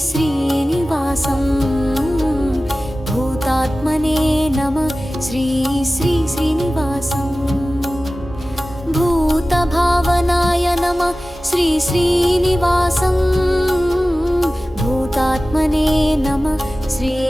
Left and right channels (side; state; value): both; normal; correlation 0.96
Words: श्रीनिवासं भूतात्मने नमः श्री श्रीनिवासं भूतभावनाय नमः श्री श्रीनिवासं भूतात्मने नमः श्री